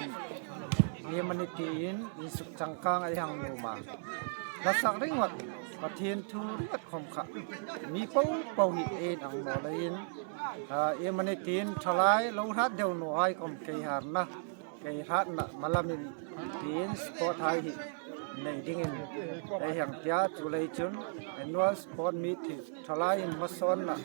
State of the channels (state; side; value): silent; left; digital silence